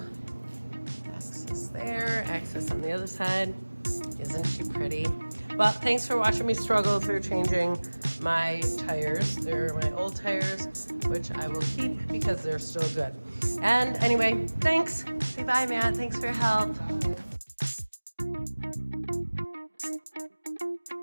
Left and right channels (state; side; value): inverted; both; correlation -1.00